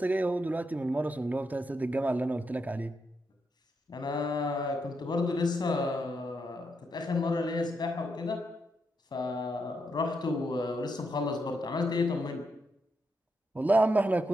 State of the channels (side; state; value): both; normal; correlation 0.81